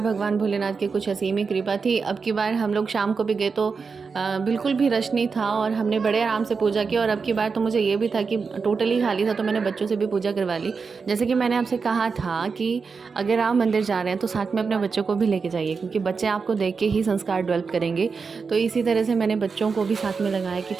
भगवान भोलेनाथ की कुछ असीम ही कृपा थी। अब की बार हम लोग शाम को भी गए तो बिल्कुल भी रश नहीं था और हमने बड़े आराम से पूजा की। और अब की बार तो मुझे ये भी था कि टोटली खाली था, तो मैंने बच्चों से भी पूजा करवा ली। जैसे कि मैंने आपसे कहा था कि अगर आप मंदिर जा रहे हैं तो साथ में अपने बच्चों को भी लेके जाइए, क्योंकि बच्चे आपको देख के ही संस्कार डेवलप करेंगे। तो इसी तरह से मैंने बच्चों को भी साथ में लगाया कि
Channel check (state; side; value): quieter; left; 5.1 dB